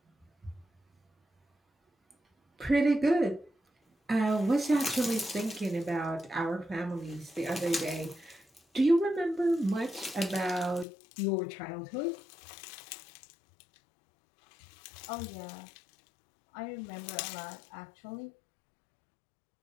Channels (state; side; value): drops out; right; at 10.9 s